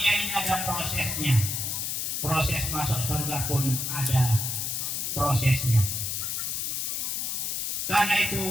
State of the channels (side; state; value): left; noise; hiss, 1 dB below the sound